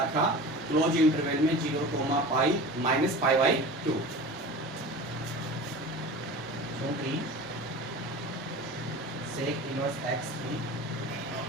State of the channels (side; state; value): both; normal; correlation 0.35